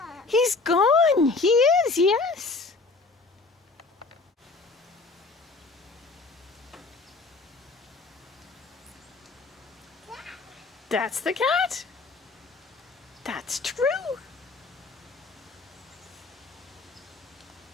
He's gone. He is, yes. That's the cat. That's true.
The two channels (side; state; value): right; quieter; 3.8 dB